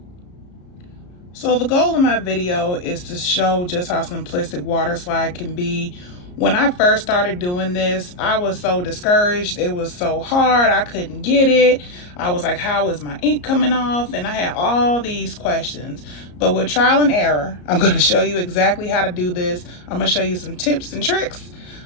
So the goal of my video is to show just how simplistic water slide can be. When I first started doing this, I was so discouraged. It was so hard. I couldn't get it. I was like, how is my ink coming off? And I had all these questions. But with trial and error, I'm going to show you exactly how to do this. I'm going to show you some tips and tricks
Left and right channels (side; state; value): right; late; 34 ms